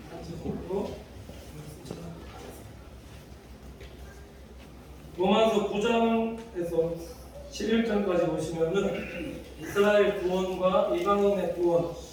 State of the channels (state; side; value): identical; both; correlation 1.00